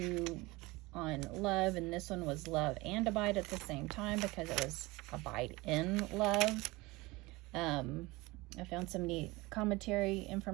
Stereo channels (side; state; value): left; quieter; 22.2 dB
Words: on Love, and this one was Love and Abide at the same time because it was Abide in Love. I found some neat commentary